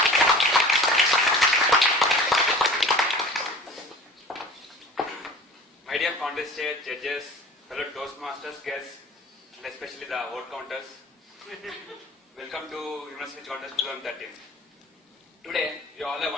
My dear contestants, judges, fellow Toastmasters, guests, and especially the vote counters, welcome to University Contest 2013. Today, you all have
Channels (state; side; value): normal; both; correlation 0.41